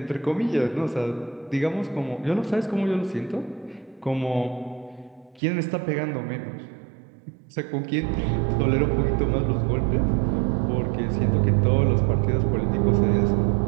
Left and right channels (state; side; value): drops out; left; at 5.4 s